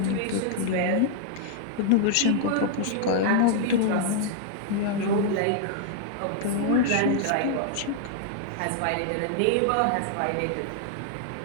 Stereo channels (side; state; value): both; different; correlation -0.01